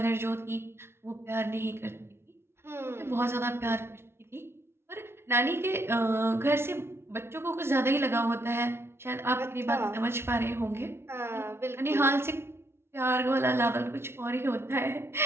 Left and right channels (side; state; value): left; late; 0.12 ms